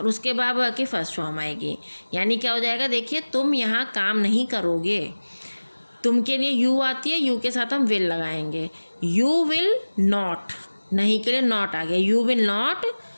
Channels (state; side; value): inverted; both; correlation -1.00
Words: उसके बाद वर्ब की फर्स्ट फॉर्म आएगी। यानी क्या हो जाएगा? देखिए, तुम यहाँ काम नहीं करोगे। तुम के लिए यू आती है, यू के साथ हम विल लगाएंगे। यू विल नॉट, नहीं के लिए नॉट आ गया। यू विल नॉट,